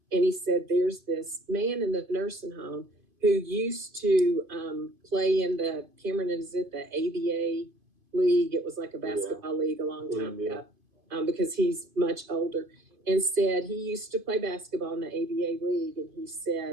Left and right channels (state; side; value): late; left; 2.5 ms